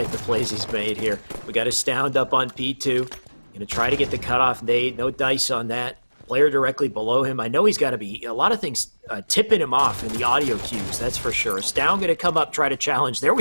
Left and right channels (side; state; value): both; inverted; correlation -1.00